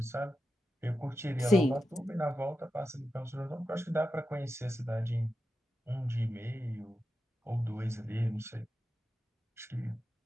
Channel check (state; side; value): normal; both; correlation 0.90